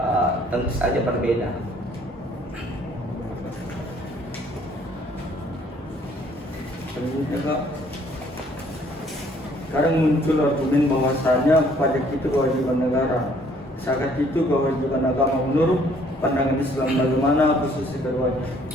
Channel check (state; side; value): normal; both; correlation 0.61